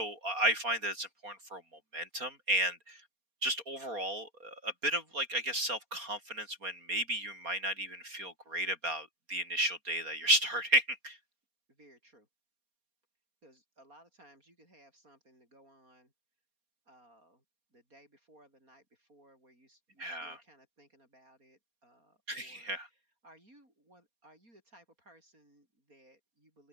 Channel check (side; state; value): left; late; 4.3 ms